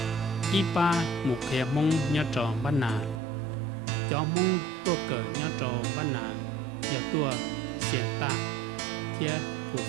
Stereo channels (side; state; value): left; drops out; at 3.2 s